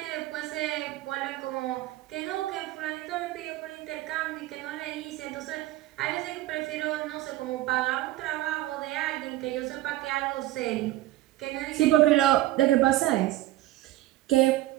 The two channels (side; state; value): left; quieter; 15.9 dB